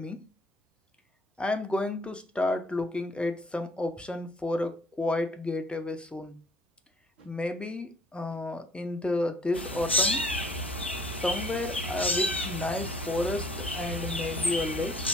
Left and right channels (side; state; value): both; normal; correlation 0.56